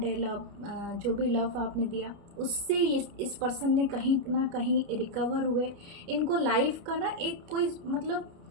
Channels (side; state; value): left; late; 29 ms